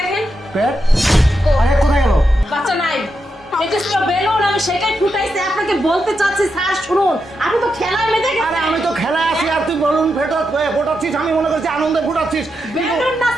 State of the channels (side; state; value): both; normal; correlation 0.85